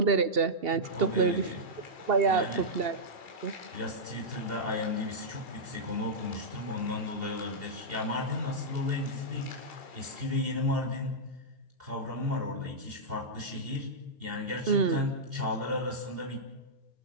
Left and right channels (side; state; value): left; late; 2.8 ms